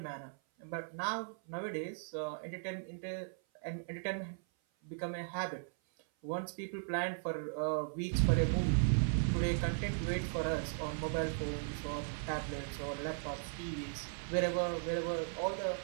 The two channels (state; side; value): silent; left; 53 dB below the other